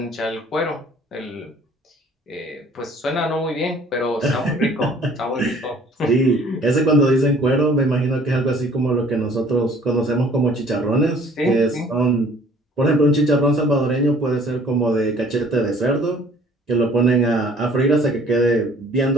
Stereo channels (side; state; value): both; normal; correlation 0.55